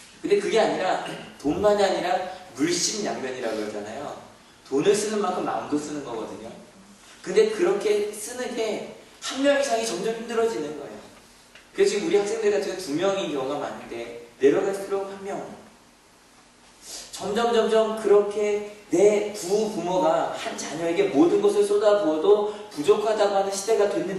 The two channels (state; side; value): identical; both; correlation 1.00